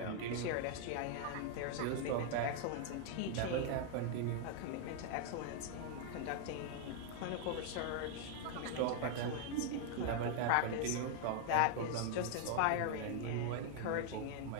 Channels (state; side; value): different; both; correlation 0.00